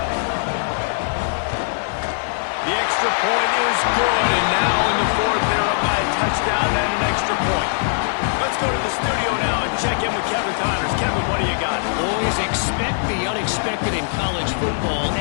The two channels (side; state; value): right; silent; digital silence